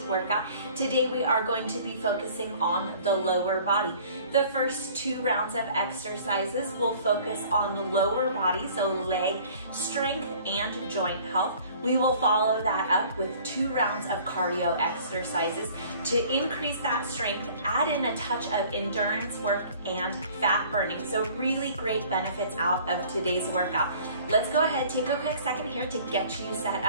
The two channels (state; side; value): inverted; both; correlation -0.51